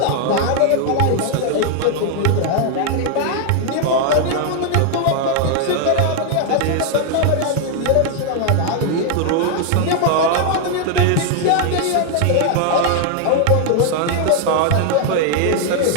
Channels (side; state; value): both; different; correlation 0.00